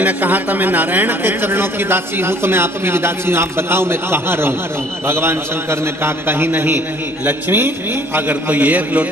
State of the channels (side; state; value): both; normal; correlation 0.56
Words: ने कहा था मैं नारायण के चरणों की दासी हूँ, तो मैं आपकी भी दासी हूँ, आप बताओ मैं कहाँ रहूं? भगवान शंकर ने कहा कहीं नहीं, लक्ष्मी अगर कोई एक